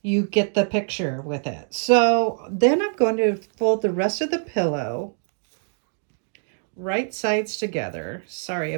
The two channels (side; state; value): left; silent; digital silence